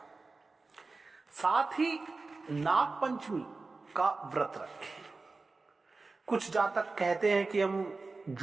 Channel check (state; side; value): quieter; left; 3.7 dB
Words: साथ ही नाग पंचमी का व्रत रखें। कुछ जातक कहते हैं कि हम